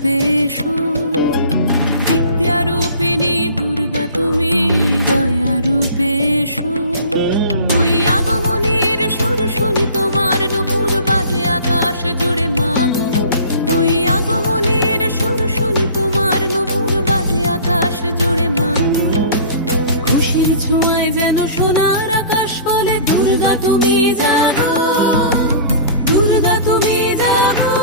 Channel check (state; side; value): inverted; both; correlation -0.44